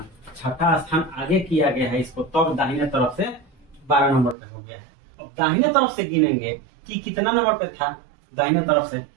6ठा स्थान आगे किया गया है इसको, तब दाहिने तरफ से 12 नंबर पे हो गया है। अब दाहिने तरफ से गिनेंगे कि कितना नंबर पे था दाहिने तरफ से,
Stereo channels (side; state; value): left; drops out; at 4.4 s